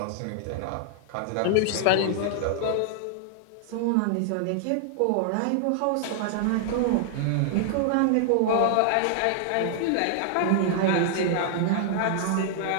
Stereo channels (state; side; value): different; both; correlation -0.01